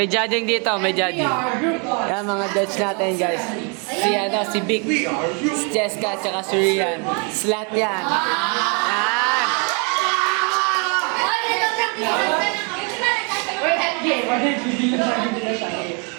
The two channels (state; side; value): quieter; left; 35.5 dB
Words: judging dito, may judging. Yan mga judge natin guys. Si Vic, si Jessica, tsaka si Rian. Slat yan. Yan.